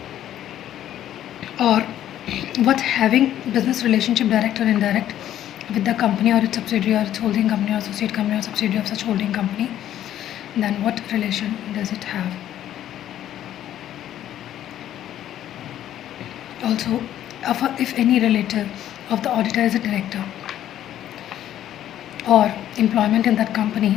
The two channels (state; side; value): quieter; right; 11.7 dB